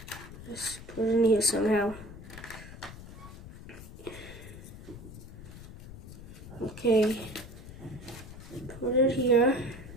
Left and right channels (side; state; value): left; noise; rumble, 14 dB below the sound